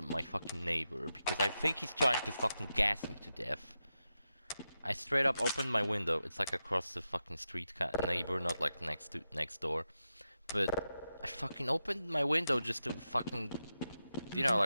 my fucking neighbor because I think he's trying to fucking gas me to death. I straight up opened my window. It's like across the fucking street kind of neighbor, not like next door. But I fucking opened my window just to fucking, you know,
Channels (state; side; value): inverted; both; correlation -0.89